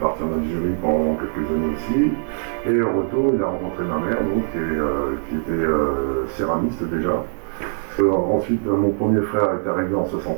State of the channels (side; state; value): left; silent; 64 dB below the other